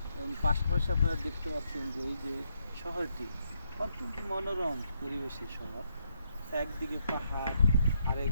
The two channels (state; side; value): inverted; both; correlation -0.76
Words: এবং পাশাপাশি আপনারা দেখতে পাচ্ছেন যে এই যে শহরটি অত্যন্ত মনোরম পরিবেশের শহর। একদিকে পাহাড়,